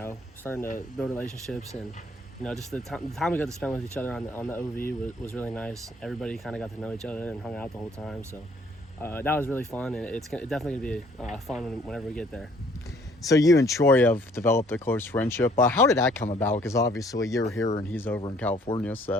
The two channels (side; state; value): both; normal; correlation 0.60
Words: starting to build relationships, and just the time we got to spend with each other on the OV was really nice. Everybody kind of got to know each other and hung out the whole time. So that was really fun, and it's definitely gonna be fun whenever we get there. So you and Troy have developed a close friendship. How did that come about? Because obviously you're here and he's over in California,